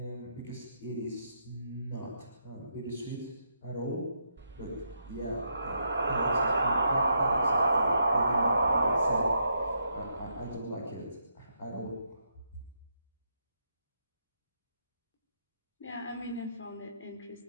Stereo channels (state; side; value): inverted; both; correlation -0.78